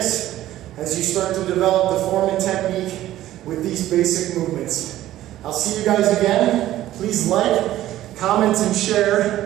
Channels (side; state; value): left; quieter; 14.0 dB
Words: as you start to develop the form and technique with these basic movements. I'll see you guys again. Please like, comment, and